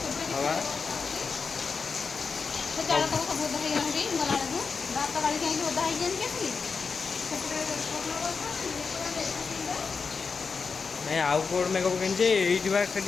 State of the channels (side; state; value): right; quieter; 5.1 dB